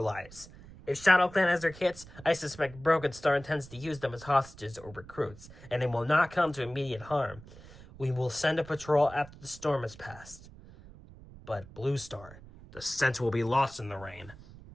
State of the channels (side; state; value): right; noise; rumble, 19 dB below the sound